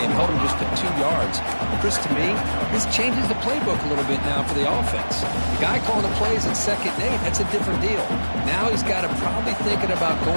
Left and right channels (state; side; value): inverted; both; correlation -1.00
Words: held him just to 2 yards. Chris, to me, this changes the playbook a little bit now for the offense. The guy calling the plays at 2nd and 8, that's a different deal. Now he's got to probably thinking about